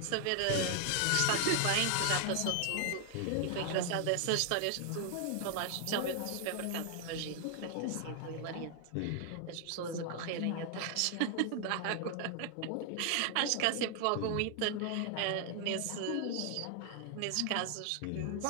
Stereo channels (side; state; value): both; different; correlation 0.00